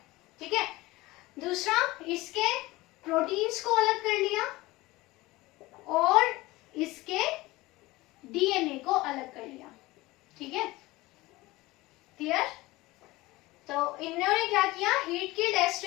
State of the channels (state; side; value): quieter; right; 20.0 dB